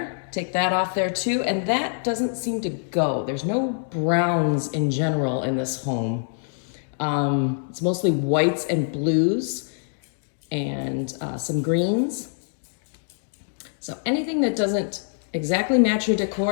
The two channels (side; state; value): right; silent; digital silence